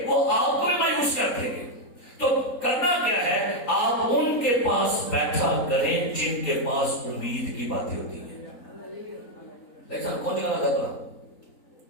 وہ آپ کو مایوس کر دیں گے. تو کرنا کیا ہے؟ آپ ان کے پاس بیٹھا کریں جن کے پاس امید کی باتیں ہوتی ہیں. لیکن کون جگہ لگا بلا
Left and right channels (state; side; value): late; right; 3.9 ms